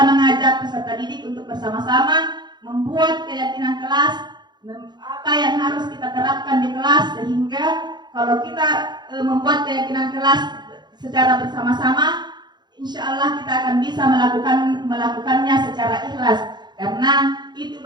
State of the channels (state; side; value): late; left; 0.21 ms